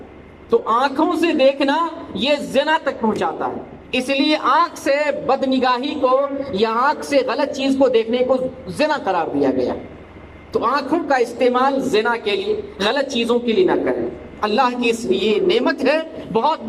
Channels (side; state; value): both; identical; correlation 1.00